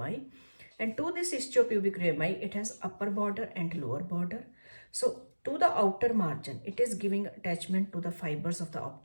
And to this ischiopubic rami, it has upper border and lower border. So to the outer margin, it is giving attachment to the fibers of the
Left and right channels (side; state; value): both; inverted; correlation -1.00